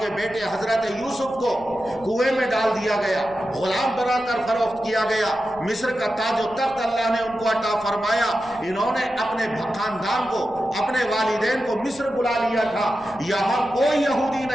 بیٹے حضرت یوسف کو کنویں میں ڈال دیا گیا، غلام بنا کر فروخت کیا گیا، مصر کا تاج و تخت اللہ نے ان کو عطا فرمایا، انہوں نے اپنے خاندان کو، اپنے والدین کو مصر بلا لیا تھا۔ یہاں کوئی یہودی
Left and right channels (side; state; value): left; noise; rumble, 22 dB below the sound